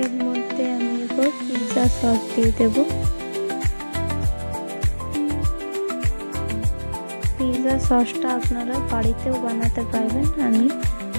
এর মধ্যে আমি এবার পিৎজা সস দিয়ে দেব। পিৎজা সসটা আপনারা বাড়িতেও বানাতে পারবেন। আমি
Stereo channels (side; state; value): both; inverted; correlation -1.00